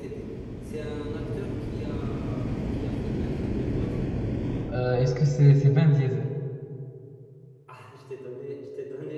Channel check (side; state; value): both; identical; correlation 1.00